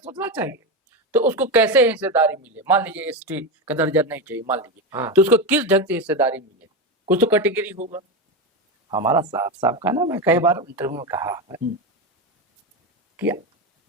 सोचना चाहिए। तो उसको कैसे हिस्सेदारी मिले? मान लीजिए एसटी का दर्जा नहीं चाहिए, मान लीजिए, तो उसको किस ढंग से हिस्सेदारी मिले? कुछ तो कैटेगरी होगा। हमारा साफ साफ का ना, मैं कई बार इंटरव्यू में कहा है कि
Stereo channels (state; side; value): normal; both; correlation 0.15